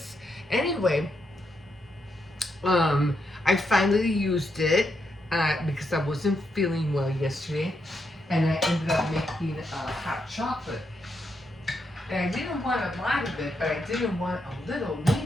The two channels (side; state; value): both; normal; correlation 0.81